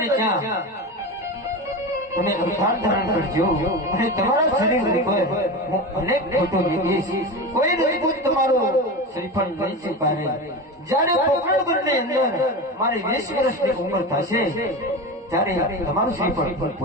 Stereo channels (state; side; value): normal; both; correlation 0.24